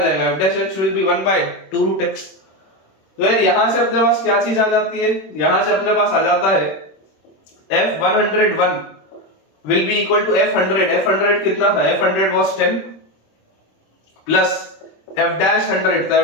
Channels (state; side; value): late; right; 26 ms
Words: f dash x will be 1/2 root x। तो यार यहां से अपने पास क्या चीज आ जाती है, यहां से अपने पास आ जाता है f 101 will be equal to f 100। f 100 कितना था, f 100 was 10 plus f dash 100, तो